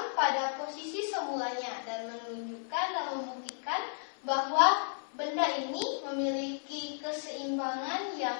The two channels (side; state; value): right; silent; 55 dB below the other